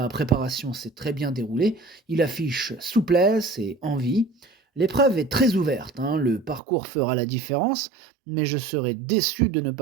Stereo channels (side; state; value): left; drops out; at 6.6 s